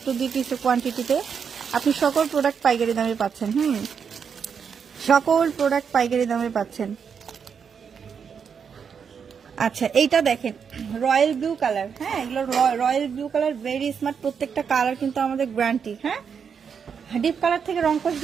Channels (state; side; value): quieter; left; 6.7 dB